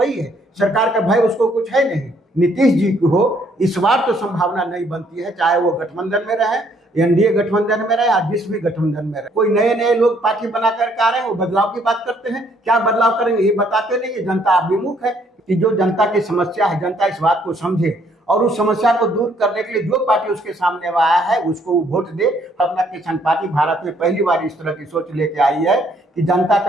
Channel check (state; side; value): normal; both; correlation 0.66